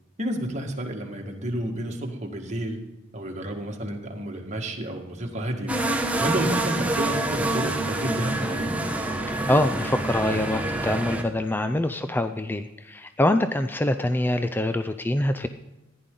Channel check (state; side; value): normal; both; correlation 0.73